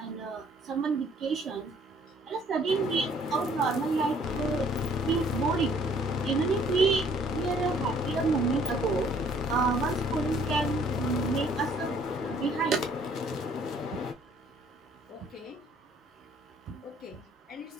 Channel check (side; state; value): both; normal; correlation 0.60